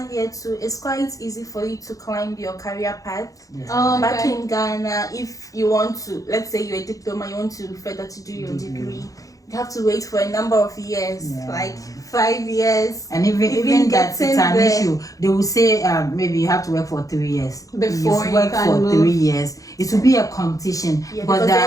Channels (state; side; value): late; right; 0.17 ms